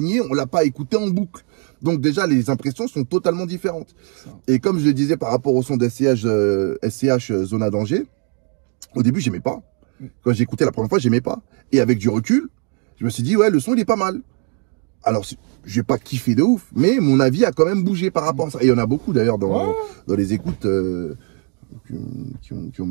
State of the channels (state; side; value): quieter; left; 37.7 dB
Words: On l'a pas écouté en boucle. Donc déjà, les impressions sont totalement différentes. Et comme je le disais par rapport au son de SCH Zona Danger, au début, j'aimais pas. Quand j'ai écouté la première fois, j'aimais pas. Et avec du recul, je me suis dit, ouais, le son, il est pas mal. Alors, je vais pas kiffer de ouf, mais mon avis a quand même bougé par rapport à ça. Et il y en a beaucoup, d'ailleurs, dans les écoutes qui ont